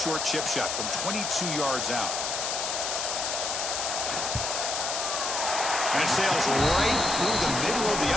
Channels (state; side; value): noise; left; hiss, 2 dB below the sound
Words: chip shot from 22 yards out. And it sails right through the middle of the